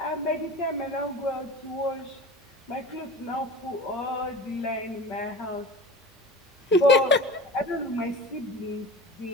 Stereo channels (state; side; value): normal; both; correlation 0.34